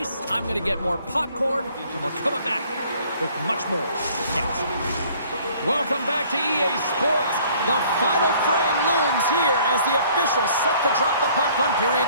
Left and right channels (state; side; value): inverted; both; correlation -0.57